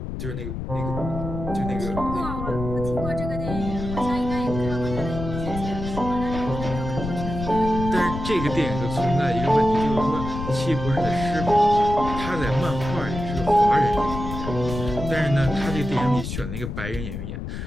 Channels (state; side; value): noise; left; rumble, 6 dB below the sound